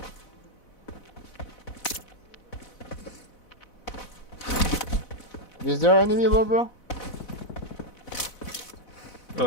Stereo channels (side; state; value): right; late; 4.0 ms